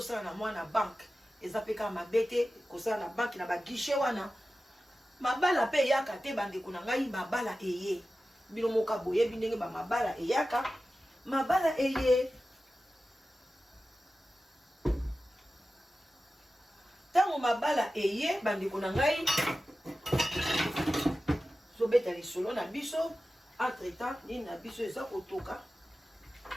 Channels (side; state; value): both; normal; correlation 0.94